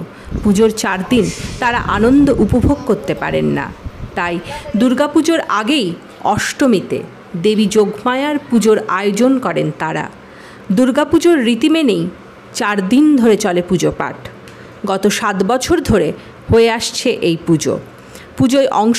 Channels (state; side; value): identical; both; correlation 1.00